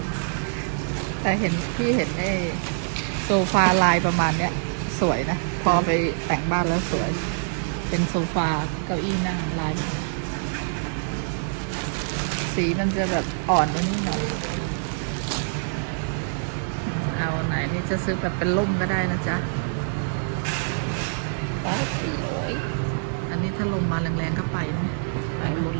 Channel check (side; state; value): left; silent; digital silence